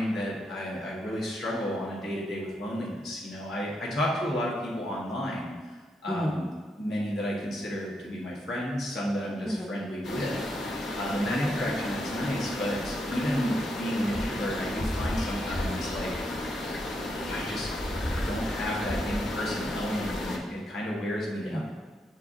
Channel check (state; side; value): normal; both; correlation 0.80